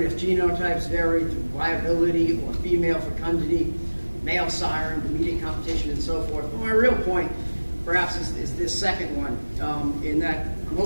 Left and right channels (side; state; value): both; inverted; correlation -1.00